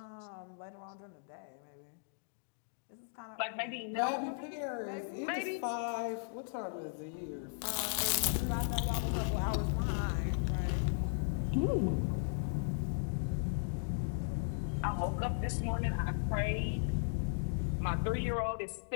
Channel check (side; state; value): right; silent; digital silence